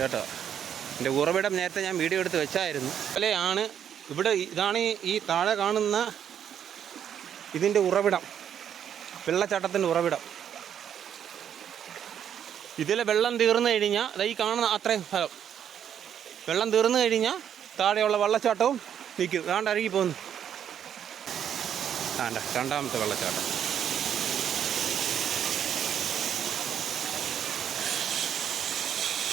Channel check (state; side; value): quieter; left; 9.1 dB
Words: എൻ്റെ ഉറവിടം നേരത്തെ ഞാൻ വീഡിയോ എടുത്ത് വെച്ചായിരുന്നു. അല്ലെയാണ് ഇവിടെ. ഇതാണ് ഈ താഴെ കാണുന്ന ഇതിൻ്റെ ഉറവിടം, വെള്ളച്ചാട്ടത്തിൻ്റെ ഉറവിടം. ഇതിലെ വെള്ളം തീർന്നു കഴിഞ്ഞാൽ ഈ കാണുന്ന അത്രയും സ്ഥലം വെള്ളം തീർന്നു കഴിഞ്ഞാൽ താഴെയുള്ള വെള്ളച്ചാട്ടവും നിൽക്കും. കാണ്ട അരുകി പോകുന്നു. കാണ്ട രണ്ടാമത്തെ വെള്ളച്ചാട്ടം.